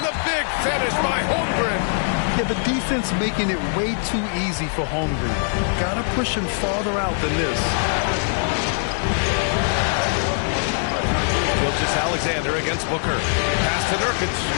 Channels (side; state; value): right; silent; digital silence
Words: Finish by Holmgren. Yeah, the defense making it way too easy for Holmgren. Gotta push him farther out than this. Gilgeous-Alexander against Booker. Pass to Nurkic.